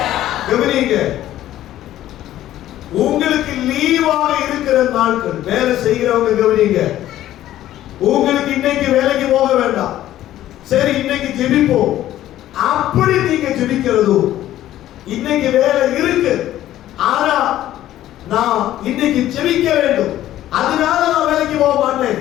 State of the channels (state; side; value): quieter; right; 13.3 dB